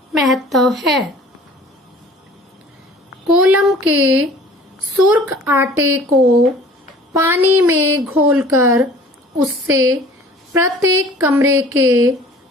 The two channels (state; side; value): normal; both; correlation 0.48